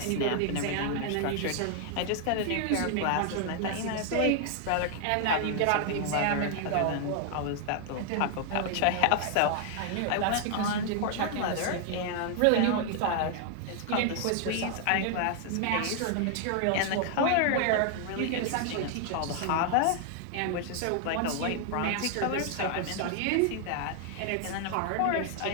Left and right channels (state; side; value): different; both; correlation 0.00